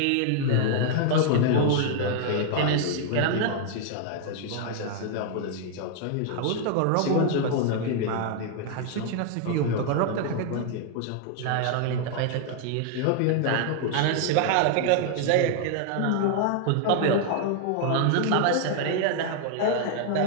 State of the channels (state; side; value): different; both; correlation 0.00